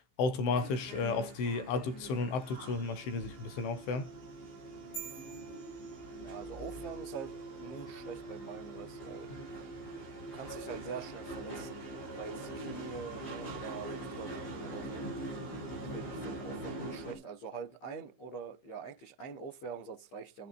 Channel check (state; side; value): late; right; 15 ms